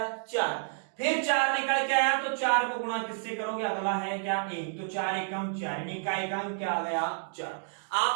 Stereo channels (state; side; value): silent; left; digital silence